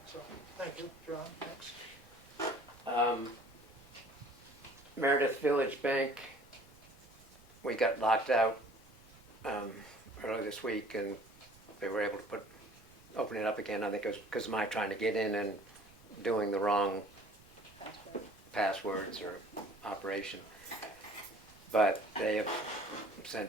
So, thank you, John. Next. Meredith Village Bank, we got locked out earlier this week, and they were able to open it up again. I think it was because of my trying to get in and doing the wrong passwords or operation. But they have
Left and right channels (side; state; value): right; noise; rumble, 25 dB below the sound